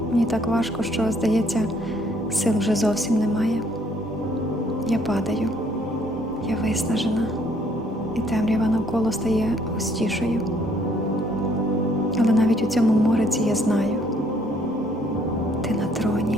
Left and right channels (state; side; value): normal; both; correlation 0.65